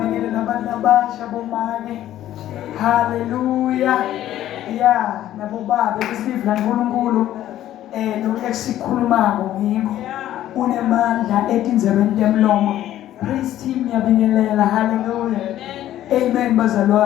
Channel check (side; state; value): right; quieter; 12.8 dB